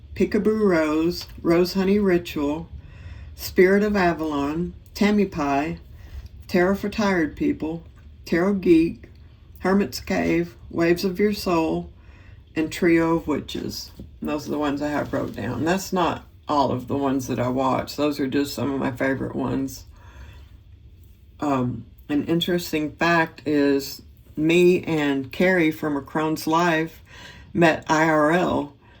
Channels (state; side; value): identical; both; correlation 1.00